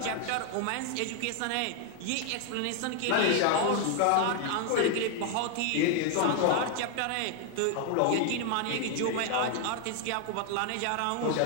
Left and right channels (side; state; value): both; different; correlation 0.00